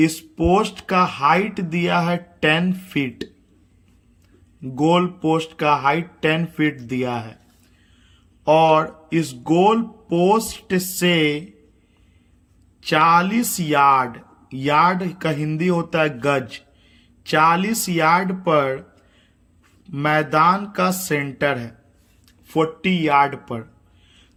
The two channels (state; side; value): identical; both; correlation 1.00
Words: पोस्ट का हाइट दिया है 10 फीट, गोल पोस्ट का हाइट 10 फीट दिया है और इस गोल पोस्ट से 40 यार्ड, यार्ड का हिंदी होता है गज, 40 यार्ड पर मैदान का सेंटर है, 40 यार्ड पर।